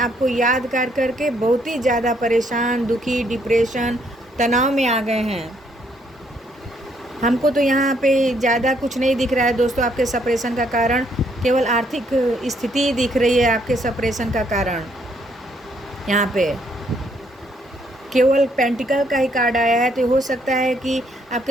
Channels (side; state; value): both; normal; correlation 0.70